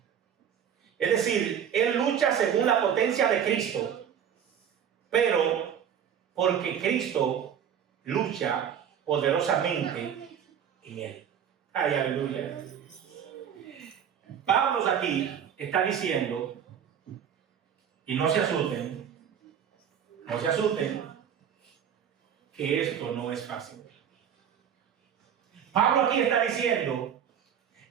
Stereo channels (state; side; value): quieter; left; 8.6 dB